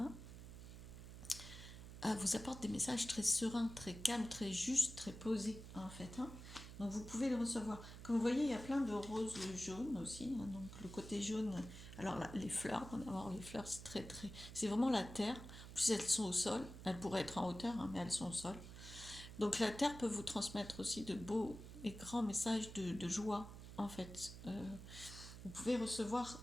hein, vous apporte des messages très sereins, très calmes, très justes, très posés, en fait. Hein. Donc vous pouvez les recevoir. Comme vous voyez, il y a plein de roses jaunes aussi. Hein. Donc le côté jaune, alors là, les fleurs, les fleurs, c'est vraiment la terre. En plus, elles sont au sol. Elles pourraient être en hauteur, hein, mais elles sont au sol. Donc la terre peut vous transmettre aussi de beaux et grands messages de joie, en fait. Vous pouvez recevoir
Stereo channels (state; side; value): noise; right; hum, 12 dB below the sound